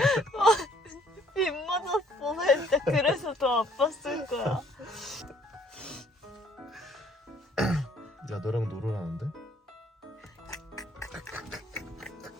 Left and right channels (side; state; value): both; normal; correlation 0.62